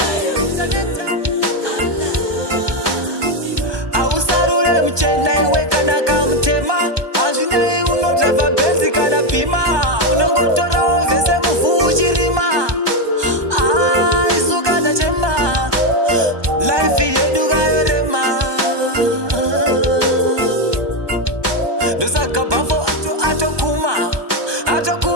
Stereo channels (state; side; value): late; left; 1.2 ms